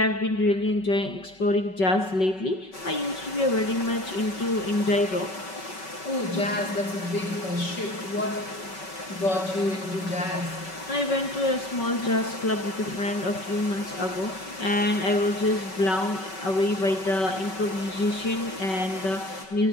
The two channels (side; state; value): right; late; 5.3 ms